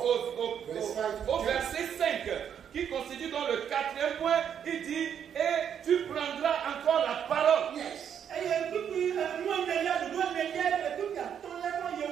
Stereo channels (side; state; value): left; quieter; 8.5 dB